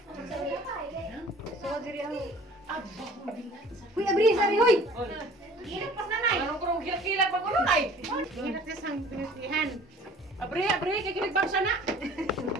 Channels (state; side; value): normal; both; correlation 0.49